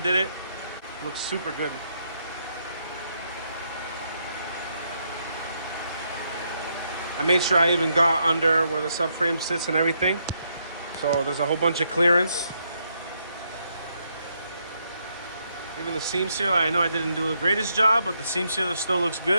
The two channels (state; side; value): inverted; both; correlation -0.77